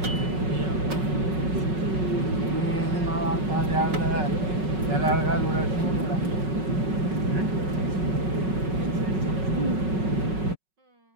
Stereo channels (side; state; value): left; late; 5.4 ms